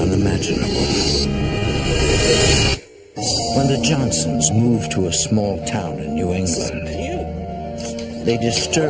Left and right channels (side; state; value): both; identical; correlation 1.00